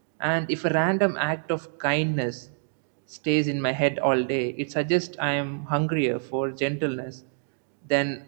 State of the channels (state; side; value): silent; left; digital silence